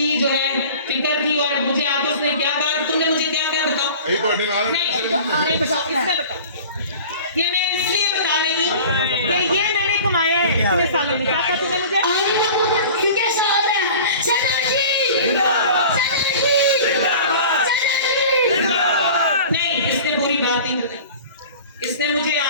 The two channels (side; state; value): both; inverted; correlation -0.41